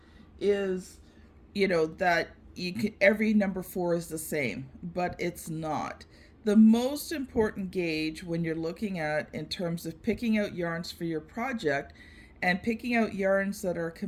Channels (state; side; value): identical; both; correlation 1.00